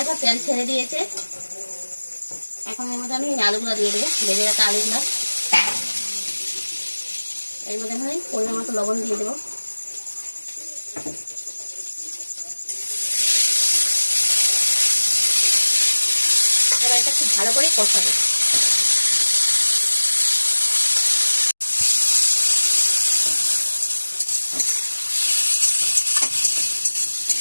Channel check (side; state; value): both; inverted; correlation -1.00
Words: তেল ছেড়ে দিয়েছে। এখন এর মধ্যে আমি আলুগুলো দিয়ে দেবো, ভেজে রাখা আলুগুলো। এর মধ্যে আমি পরিমাণ মতো লবণ দিয়ে দেবো। এটা খুব ভালো করে কষাবো।